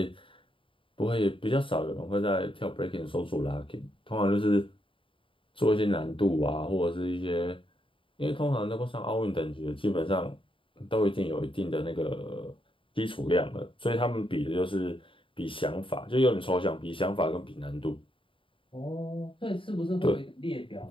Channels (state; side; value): late; right; 0.25 ms